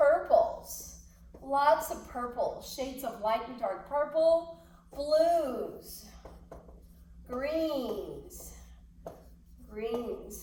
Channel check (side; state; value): both; identical; correlation 1.00